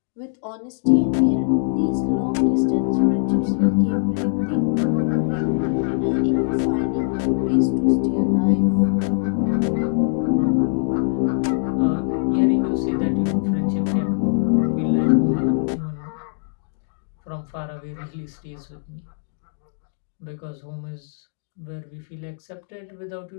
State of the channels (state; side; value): silent; right; digital silence